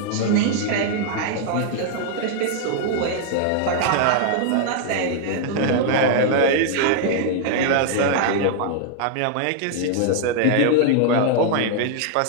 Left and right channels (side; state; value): both; different; correlation -0.01